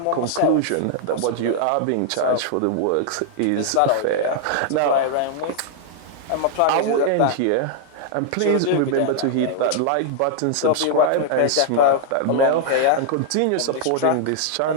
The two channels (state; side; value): different; both; correlation -0.01